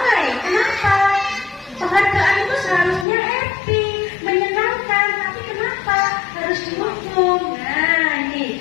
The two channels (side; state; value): right; drops out; at 3.1 s